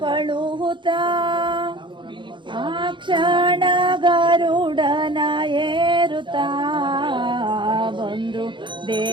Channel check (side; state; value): left; late; 0.23 ms